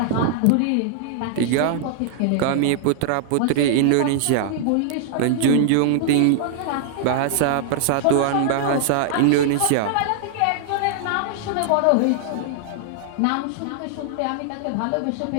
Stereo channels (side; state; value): both; different; correlation -0.01